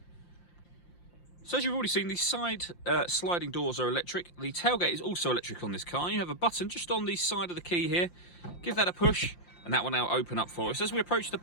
So as you've already seen, the side sliding doors are electric. The tailgate is also electric on this car. You have a button just on the side of the key here. Give that a push, and that will now open up for us. As we approach the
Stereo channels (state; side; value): late; right; 5.7 ms